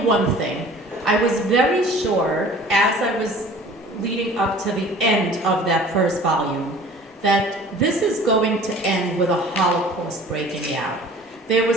one thing. I was very sure, as I was leading up to the end of that first volume, that this is going to end with a Holocaust breaking out. There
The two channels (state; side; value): normal; both; correlation 0.47